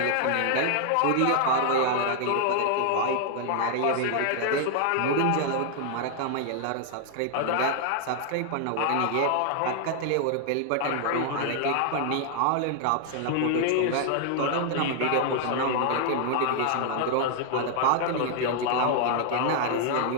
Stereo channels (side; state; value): both; different; correlation 0.00